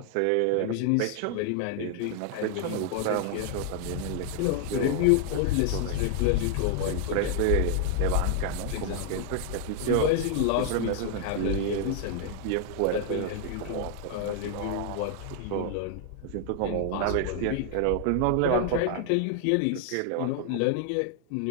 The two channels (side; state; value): both; different; correlation 0.00